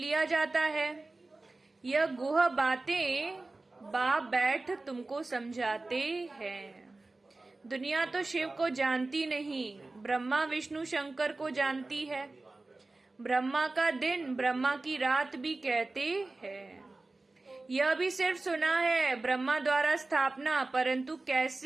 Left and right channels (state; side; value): quieter; left; 3.2 dB